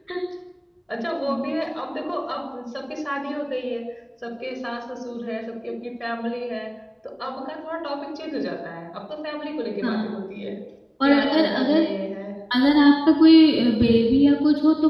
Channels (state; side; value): identical; both; correlation 1.00